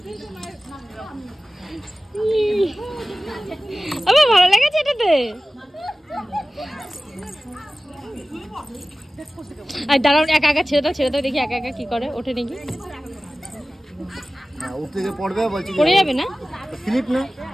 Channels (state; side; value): normal; both; correlation 0.96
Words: আমার ভালো লেগেছে এটাতে। আর দাঁড়াও, একা ছেড়ে দাও দেখি একা কি করে, ওঠে নাকি। পড়ে যাবে না? স্লিপ না,